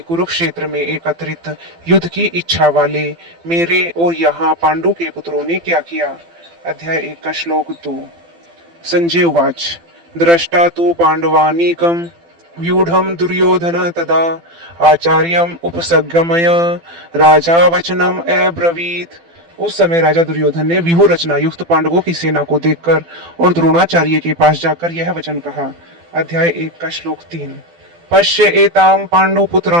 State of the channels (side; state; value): left; late; 12 ms